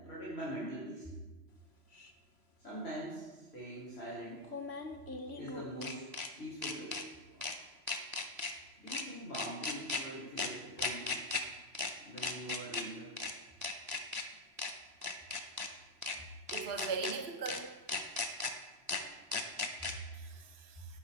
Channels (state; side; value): late; left; 3.0 ms